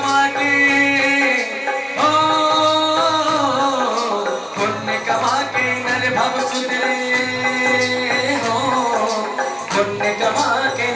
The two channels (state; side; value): identical; both; correlation 1.00